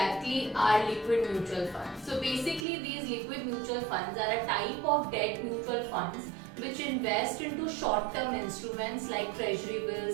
are liquid mutual funds. So basically these liquid mutual funds are a type of debt mutual funds which invest into short-term instruments like treasury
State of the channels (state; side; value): drops out; left; at 2.7 s